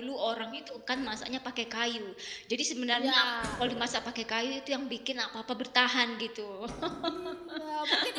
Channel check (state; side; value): identical; both; correlation 1.00